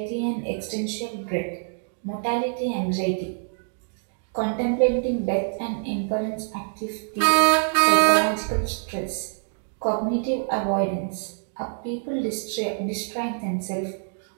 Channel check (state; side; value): silent; left; digital silence